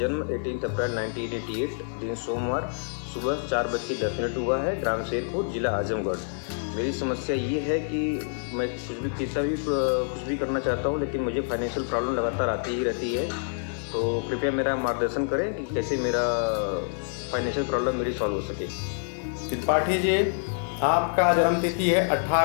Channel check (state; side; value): silent; right; 57 dB below the other